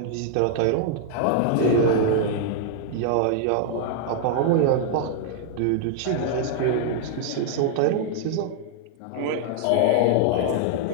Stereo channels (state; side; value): different; both; correlation 0.00